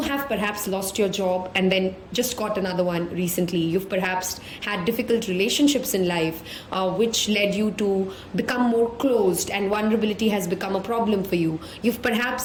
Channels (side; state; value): both; identical; correlation 1.00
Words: have perhaps lost your job and then just got another one recently. You've perhaps had difficult relationships in life, which led you to become more closed, and vulnerability has become a problem for you. You've